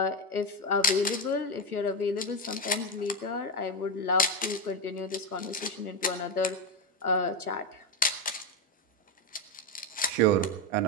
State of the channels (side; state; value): both; normal; correlation 0.11